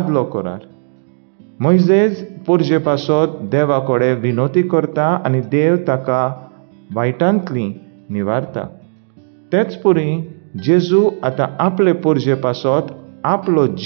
करार. मोइजेज पुर्जे पासत देवा कडेन विनोती करता आनी देव ताका वायटांतली निवारता. तेच पुरी जेजू आतां आपले पुर्जे पासत आपलो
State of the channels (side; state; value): left; silent; digital silence